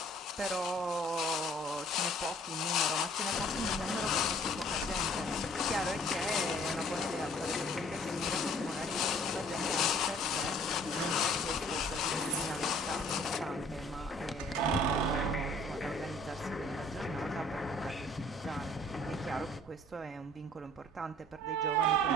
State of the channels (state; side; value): normal; both; correlation 0.55